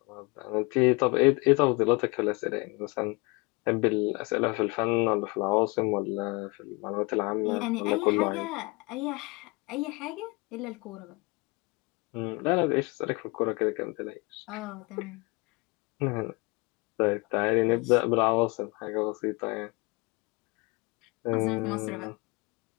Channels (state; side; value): quieter; right; 27.2 dB